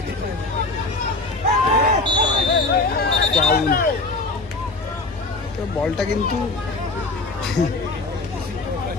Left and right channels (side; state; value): right; quieter; 3.3 dB